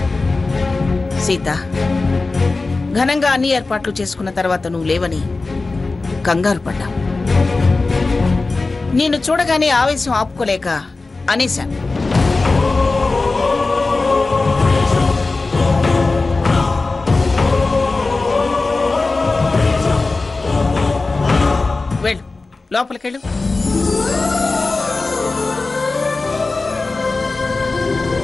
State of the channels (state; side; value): quieter; right; 3.6 dB